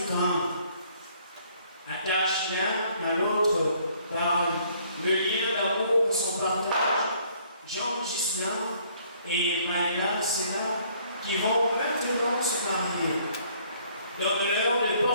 grand. Attache l'un à l'autre par le lien d'amour que sont partagés Jean Ghislain et Maëla Sénat qui vont maintenant se marier. Donne-leur de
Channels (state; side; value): inverted; both; correlation -0.62